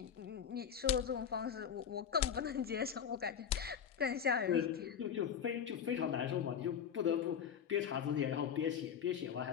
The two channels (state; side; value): quieter; right; 8.0 dB